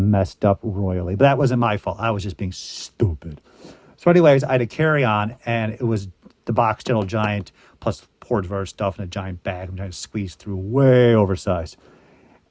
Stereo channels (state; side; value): identical; both; correlation 1.00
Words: up royally. But that wasn't my fault. I was just being stupid. So anyways, I had to carry on, and it was the box Gentle Giant plus porridge of other stuff in a giant bag. I'm trying to squeeze through, way oversized.